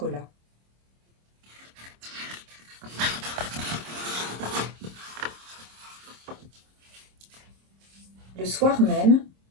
Le soir même,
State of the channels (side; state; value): left; late; 26 ms